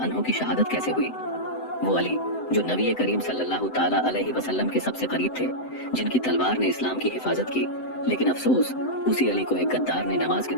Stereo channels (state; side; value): late; right; 7.8 ms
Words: अन्हो की शहादत कैसे हुई। वो अली जो नबी करीम सल्लल्लाहु ताला अलैहि वसल्लम के सबसे करीब थे, जिनकी तलवार ने इस्लाम की हिफाजत की, लेकिन अफसोस उसी अली को एक गद्दार ने नमाज के